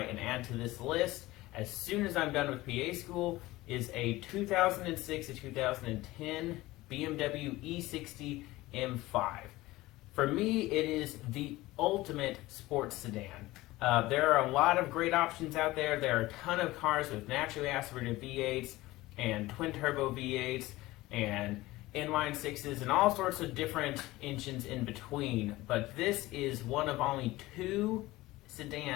and add to this list as soon as I'm done with PA school is a 2006 to 2010 BMW E60 M5. For me, it is the ultimate sports sedan. There are a lot of great options out there. There are a ton of cars with naturally aspirated V8s and twin turbo V8s and inline sixes and all sorts of different engines in between. But this is one of only 2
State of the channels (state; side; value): quieter; right; 18.6 dB